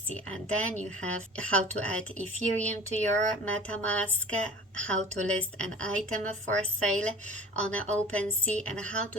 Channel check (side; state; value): both; normal; correlation 0.42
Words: And then you have how to add Ethereum to your MetaMask, how to list an item for sale on OpenSea, and how